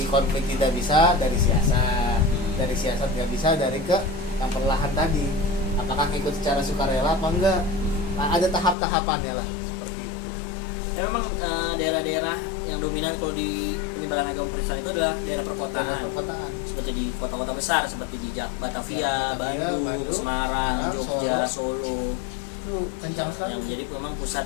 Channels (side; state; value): right; drops out; at 8.8 s